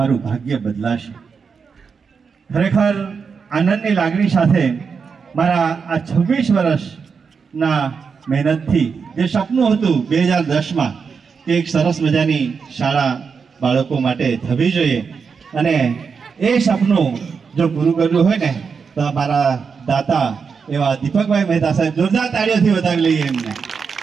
ભાગ્ય બદલાશે. ખરેખર આનંદની લાગણી સાથે મારા આ 26 વર્ષના મહેનતથી જે સપનું હતું 2010માં કે એક સરસ મજાની શાળા બાળકો માટે થવી જોઈએ અને એ સપનું જો પૂરું કર્યું હોય ને તો મારા દાતા એવા દીપકભાઈ મહેતા સાહેબ, જોરદાર તાળીઓથી વધાવી લઈએ એમને.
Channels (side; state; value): left; quieter; 5.7 dB